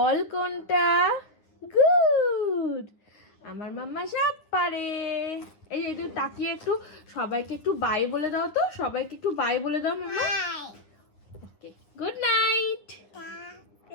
কোনটা? গুড। আমার মাম্মা সব পারে। এই যে একটু তাকিয়ে একটু সবাইকে একটু বাই বলে দাও তো, সবাইকে একটু বাই বলে দাও mumma. Okay good night.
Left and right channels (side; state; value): right; late; 9.5 ms